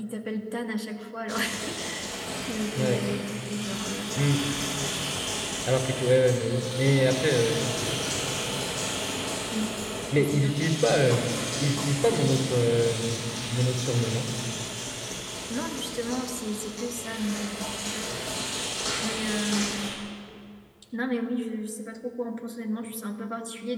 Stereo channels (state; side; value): identical; both; correlation 1.00